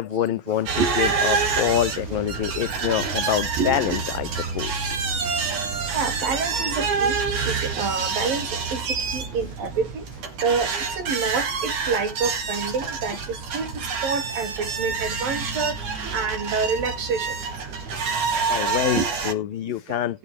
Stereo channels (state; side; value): late; left; 11 ms